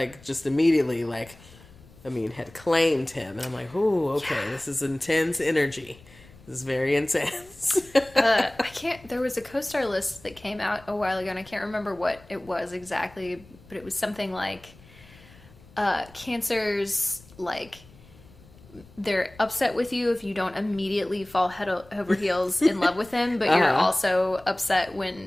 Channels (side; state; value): left; noise; rumble, 24 dB below the sound